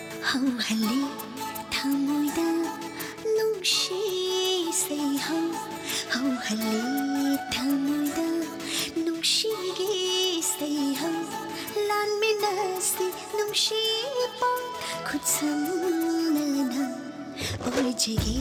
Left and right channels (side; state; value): both; identical; correlation 1.00